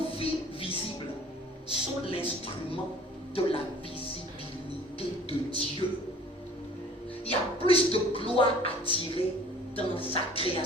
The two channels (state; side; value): normal; both; correlation 0.49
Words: vies visibles sont l'instrument de la visibilité de Dieu. Il y a plus de gloire à tirer dans sa